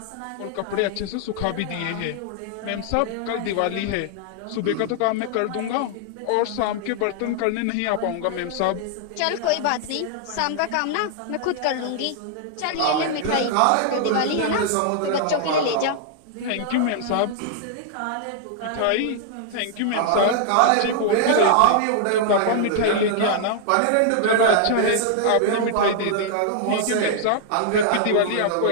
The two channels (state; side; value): different; both; correlation -0.01